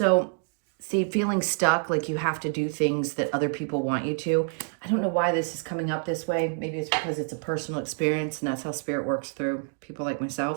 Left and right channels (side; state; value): left; silent; 56 dB below the other